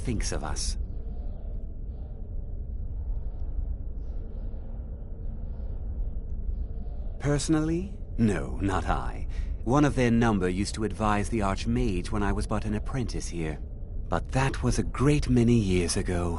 of us. Personally? No, not I. One of their number used to advise the Archmage when I was but an apprentice here. But that was a great many years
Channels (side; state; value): both; identical; correlation 1.00